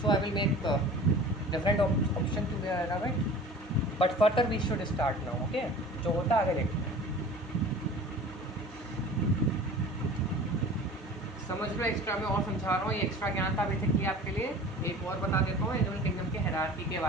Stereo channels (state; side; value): normal; both; correlation 0.41